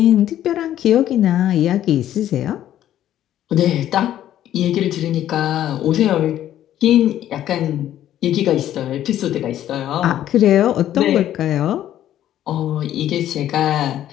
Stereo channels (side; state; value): right; quieter; 11.9 dB